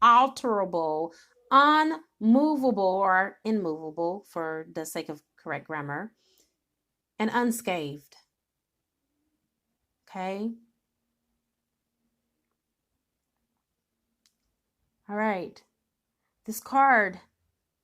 unmovable or immovable for the sake of correct grammar, and unscathed. Okay? All right. This card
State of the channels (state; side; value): identical; both; correlation 1.00